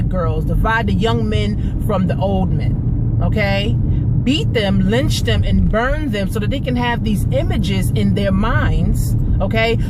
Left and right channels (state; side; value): identical; both; correlation 1.00